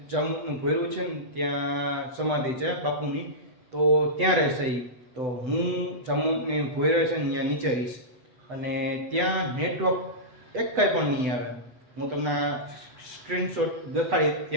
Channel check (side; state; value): left; late; 8.0 ms